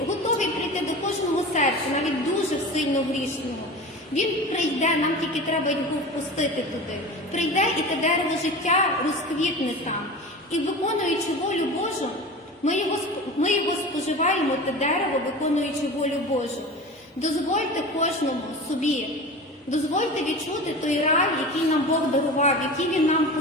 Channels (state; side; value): normal; both; correlation 0.32